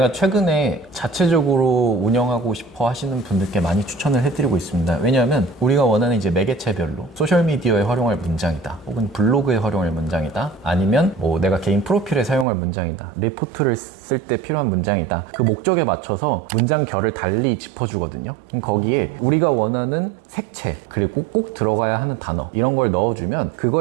최근에 자체적으로 운영하고 싶어 하시는 분들께 많이 추천을 해드리고 있습니다. 왜냐하면 우리가 원하는 이제 매개체별로 소셜미디어에 활용할 문장이다, 혹은 블로그에 활용할 문장이다, 아니면 뭐 내가 개인 프로필에 사용할 문장이다, 리포트를 쓸 때 필요한 문장이다, 그 목적에 맞춰서 문장 결을 달리 짚어주거든요. 거기에 우리가 원하는 색채, 그리고 꼭 들어가야 하는 단어, 이런 걸 넣어주면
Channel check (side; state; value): left; drops out; at 12.5 s